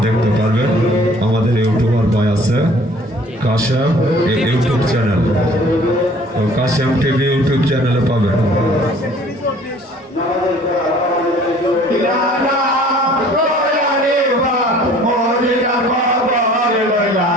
দেখতে পারবেন। আমাদের ইউটিউবার ভাই আছে কাশেম ইউটিউব চ্যানেল, তো কাশেম টিভি ইউটিউব চ্যানেলে পাবেন।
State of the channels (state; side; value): normal; both; correlation 0.52